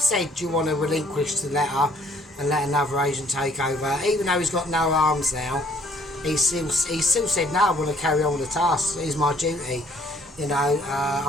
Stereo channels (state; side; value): normal; both; correlation 0.61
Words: do you want to relinquish the letter and let another agent take over? Even though he's got no arms now, he still said, no, I want to carry on with the task. It's my duty. You know,